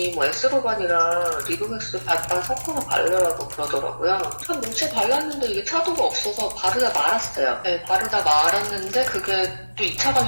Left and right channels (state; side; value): inverted; both; correlation -1.00